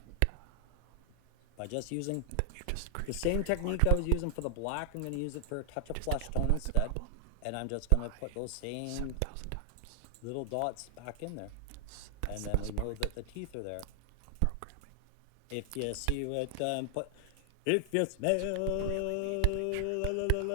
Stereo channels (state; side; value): different; both; correlation 0.00